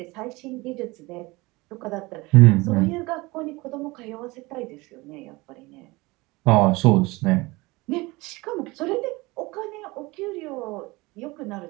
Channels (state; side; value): quieter; left; 22.8 dB